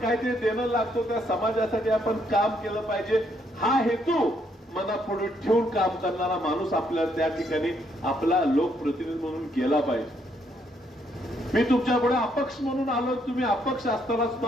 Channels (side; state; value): both; normal; correlation 0.72